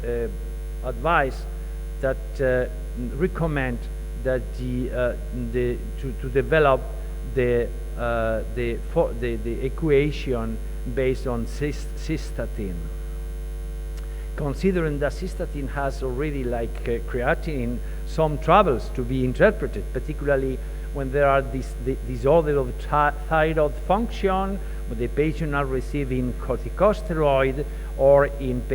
advise that recommend that to develop the equation based on cystatin. Considering that cystatin has already, like creatinine, some troubles to be interpreted, particularly when there are disorder of thyroid function, when the patient are receiving corticosteroid, or in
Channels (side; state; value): both; identical; correlation 1.00